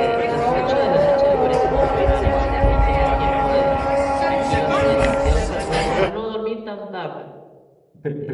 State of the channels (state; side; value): identical; both; correlation 1.00